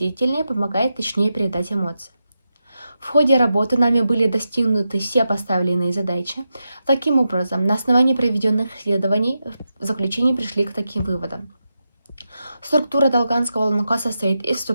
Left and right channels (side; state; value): both; inverted; correlation -0.88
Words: помогает точнее передать эмоции. В ходе работы нами были достигнуты все поставленные задачи. Таким образом, на основании проведенных исследований в заключении пришли к таким выводам. Структура долганского лонко состоит из